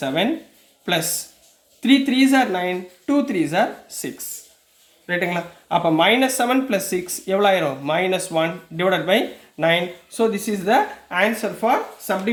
plus 3 3s are 9, 2 3s are 6. ரைட்டுங்களா? அப்போ -7 + 6 எவ்வளோ ஆயிரும்? -1 divided by 9. So this is the answer for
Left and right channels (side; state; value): both; identical; correlation 1.00